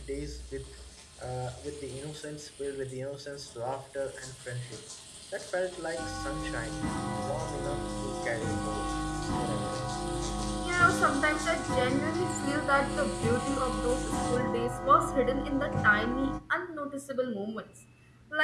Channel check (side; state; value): both; identical; correlation 1.00